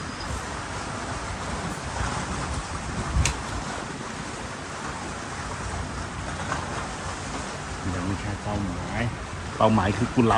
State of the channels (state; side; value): identical; both; correlation 1.00